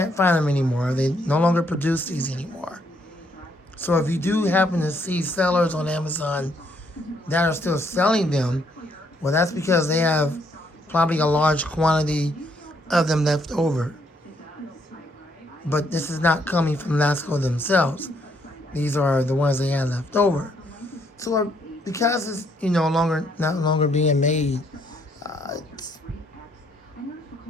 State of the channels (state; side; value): normal; both; correlation 0.71